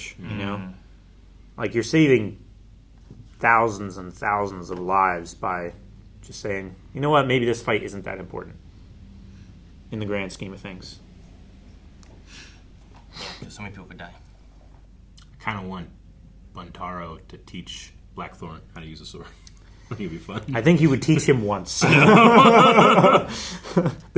you know? Like, you're saving thousands and thousands of lives by just saying, you know what, maybe this fight isn't that important in the grand scheme of things. Yeah, because so many people could die. I kind of want Buntaro to teach Blackthorn how to use a sword. I think it'd be fun. I think he would teach him once.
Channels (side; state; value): both; identical; correlation 1.00